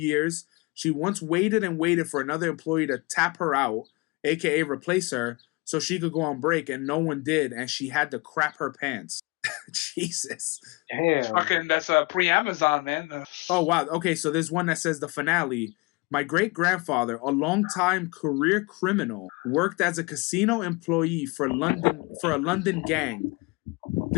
She once waited and waited for another employee to tap her out, aka replace her, so she could go on break, and no one did, and she had to crap her pants. Jesus. Damn. That's pre-Amazon, man. Oh, wow. Okay, so there's one that says the finale. My great-grandfather, a long-time career criminal, worked as a casino employee for a London gang.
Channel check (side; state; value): right; quieter; 26.7 dB